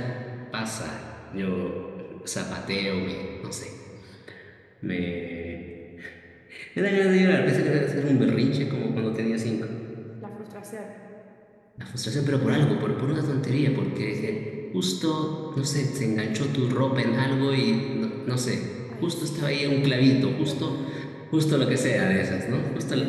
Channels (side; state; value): both; identical; correlation 1.00